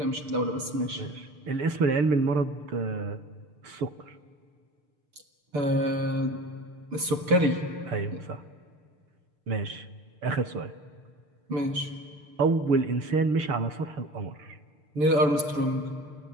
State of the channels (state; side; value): late; left; 6.7 ms